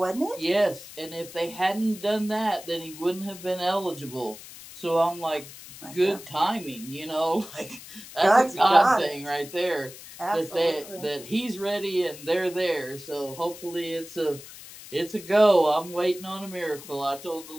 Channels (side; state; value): left; noise; hiss, 16 dB below the sound